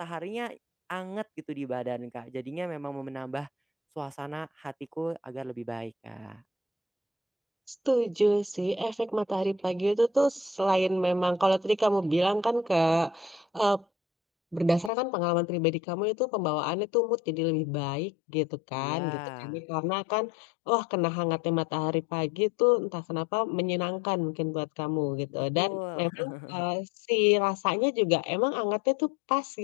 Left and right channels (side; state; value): right; drops out; at 14.9 s